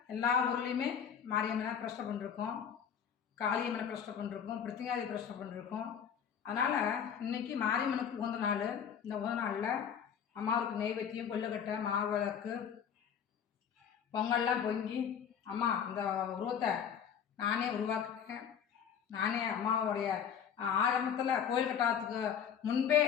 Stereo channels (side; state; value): right; quieter; 7.9 dB